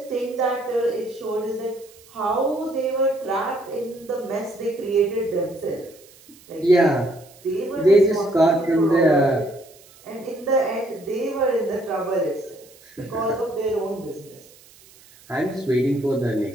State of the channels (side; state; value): right; noise; hiss, 25 dB below the sound